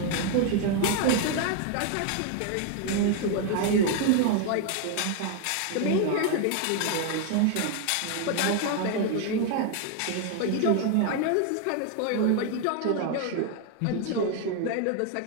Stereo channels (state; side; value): different; both; correlation 0.01